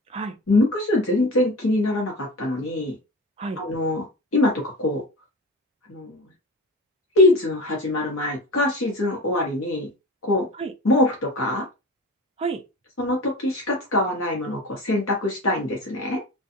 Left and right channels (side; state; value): both; normal; correlation 0.31